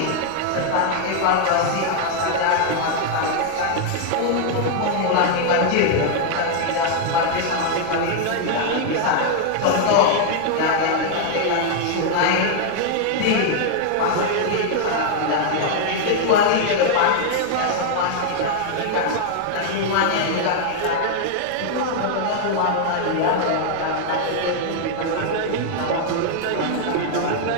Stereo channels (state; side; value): different; both; correlation 0.00